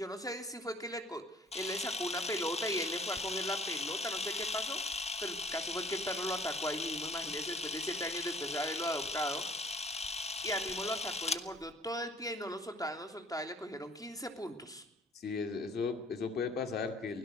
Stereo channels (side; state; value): both; normal; correlation 0.55